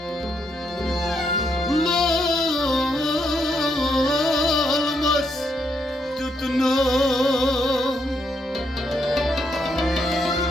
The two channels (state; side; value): normal; both; correlation 0.77